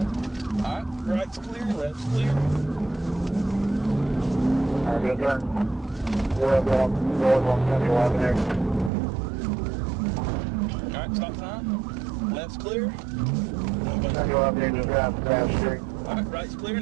Alright, right's clear, left's clear. Good turn. Left on there. Alright, stop sign. Left's clear. Now you want me to drive down the street. Alright, right's clear,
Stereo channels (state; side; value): drops out; left; at 8.9 s